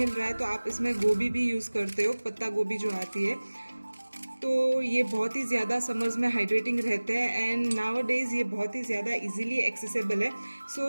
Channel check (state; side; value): inverted; both; correlation -1.00